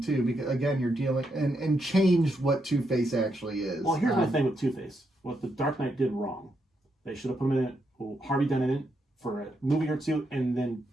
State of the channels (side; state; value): both; normal; correlation 0.80